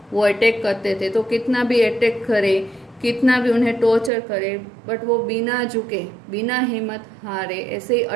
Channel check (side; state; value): left; drops out; at 4.1 s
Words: वो अटैक करते थे तो कितना भी अटैक करे, कितना भी उन्हें टॉर्चर करे, बट वो बिना झुके बिना हिम्मत हारे ऐसे ही